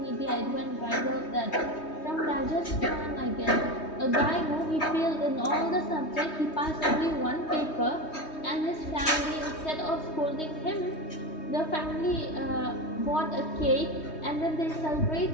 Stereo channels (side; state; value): right; late; 3.2 ms